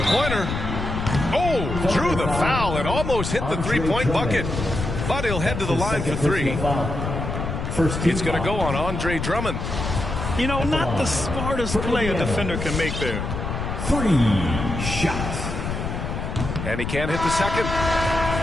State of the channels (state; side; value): noise; left; rumble, 4 dB below the sound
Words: Oh, drew the foul and almost hit the three-point bucket. But he'll head to the line for 3. It's going to go on Andre Drummond. You know, not the smartest play a defender can make there. 3 shots. And he can't hit the second.